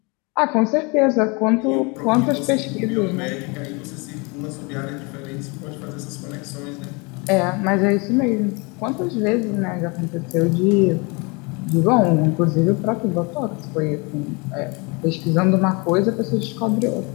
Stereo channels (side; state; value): right; quieter; 29.5 dB